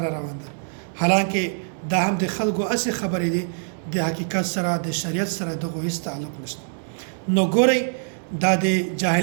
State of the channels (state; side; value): silent; left; digital silence